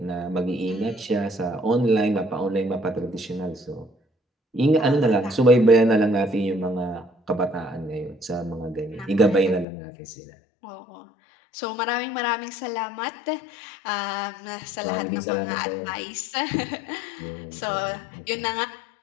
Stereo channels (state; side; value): drops out; right; at 9.7 s